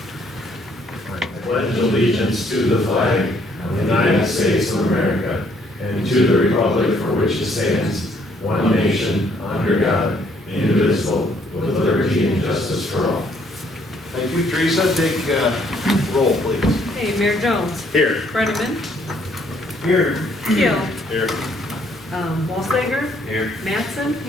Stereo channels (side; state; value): both; normal; correlation 0.66